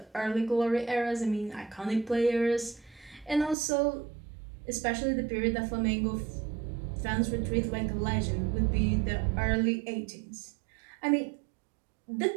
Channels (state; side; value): drops out; left; at 3.6 s